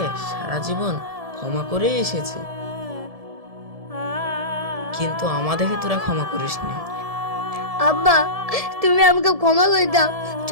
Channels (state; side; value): late; left; 1.7 ms